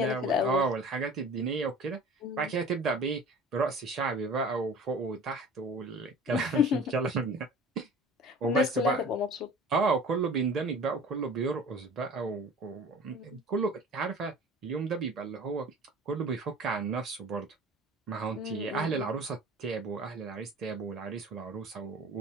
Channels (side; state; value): both; normal; correlation 0.42